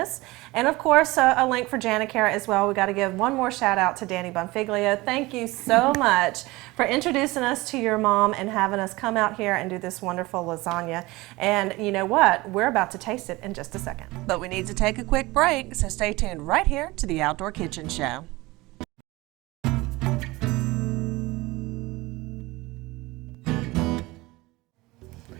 and of course, a link for Janicare as well. We got to give one more shout out to Danny Bonfiglio. Thank you so much for introducing us to your mom and having us come out here and do this wonderful lasagna. And you know what? We're about to taste it in just a second. But we need to take a quick break, so stay tuned right here to the Outdoor Kitchen Show.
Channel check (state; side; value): quieter; left; 21.2 dB